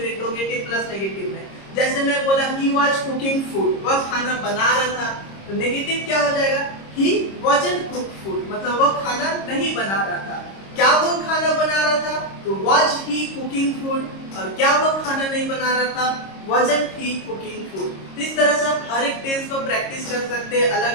इंट्रोगेटिव प्लस नेगेटिव में। जैसे मैं बोला ही वाज कुकिंग फूड, वह खाना बना रहा था, तो नेगेटिव क्या हो जाएगा? ही वाजंट कुक फूड, मतलब वह खाना नहीं बना रहा था। क्या वो खाना बना रहा था? तो वाज ही कुकिंग फूड। और क्या वो खाना नहीं बना रहा था? wasn't he cooking food। इस तरह से आप हर एक टेंस को प्रैक्टिस कर सकते हैं, अलग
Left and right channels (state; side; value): late; right; 26 ms